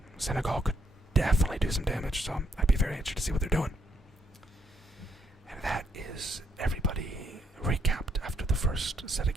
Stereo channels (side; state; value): both; normal; correlation 0.73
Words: Senegal could definitely do some damage, so I'd be very interested to see what they're doing. And that is everybody recapped after the first set of